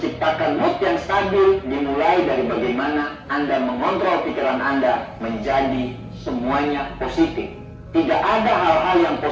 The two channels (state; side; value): identical; both; correlation 1.00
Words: mood yang stabil dimulai dari bagaimana Anda mengontrol pikiran Anda menjadi semuanya positif. Tidak ada hal-hal yang